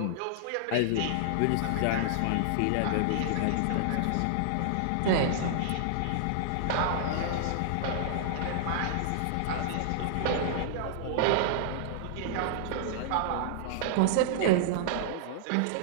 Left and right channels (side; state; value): both; different; correlation -0.01